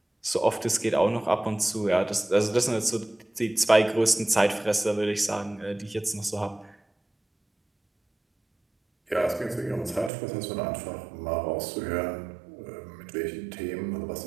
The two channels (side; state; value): left; drops out; at 10.1 s